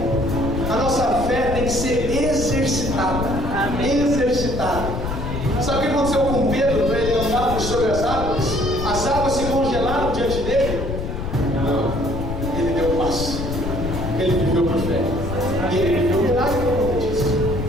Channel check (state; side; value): noise; left; rumble, 5 dB below the sound